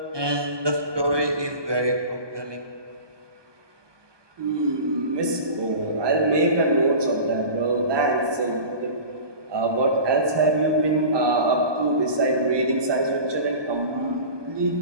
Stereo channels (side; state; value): left; late; 1.2 ms